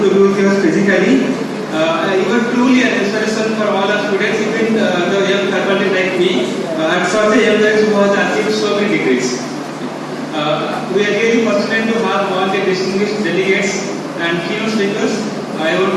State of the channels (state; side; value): identical; both; correlation 1.00